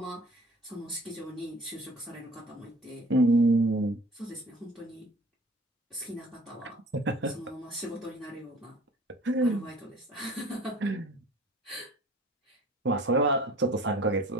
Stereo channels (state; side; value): normal; both; correlation 0.47